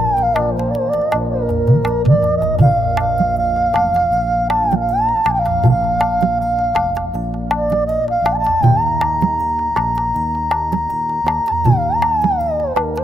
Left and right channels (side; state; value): both; normal; correlation 0.84